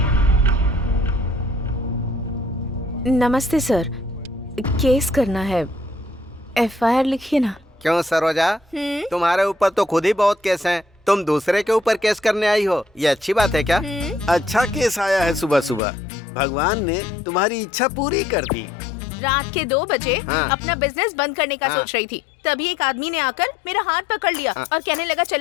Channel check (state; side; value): drops out; right; at 15.8 s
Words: नमस्ते सर, केस करना है। एफआईआर लिखिए ना। क्यों सरोजा, तुम्हारे ऊपर तो खुद ही बहुत केस हैं। तुम दूसरे के ऊपर केस करने आई हो, ये अच्छी बात है क्या? अच्छा केस आया है सुबह सुबह। भगवान ने तुम्हारी इच्छा पूरी कर दी। रात के 2 बजे हाँ। अपना बिजनेस बंद करने का हाँ। सोच रही थी, तभी एक आदमी ने आकर मेरा हाथ पकड़ लिया और कहने लगा